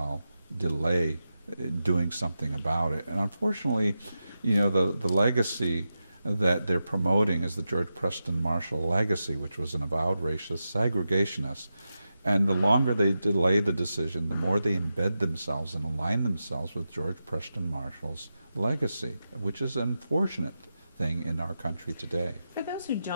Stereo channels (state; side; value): inverted; both; correlation -0.90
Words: delay doing something about it? And unfortunately, you know, the legacy that they're promoting is the George Preston Marshall legacy, which was an avowed racist segregationist. And the longer they delay the decision, the more they embed themselves and align themselves with George Preston Marshall's legacy, which is an unfortunate thing in our country today. For those who